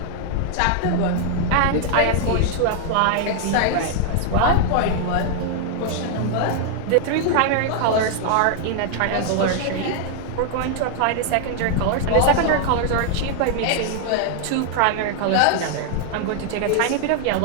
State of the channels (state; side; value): different; both; correlation 0.00